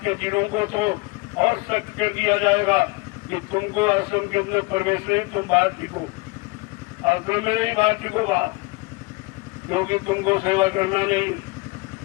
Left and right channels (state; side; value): quieter; right; 25.7 dB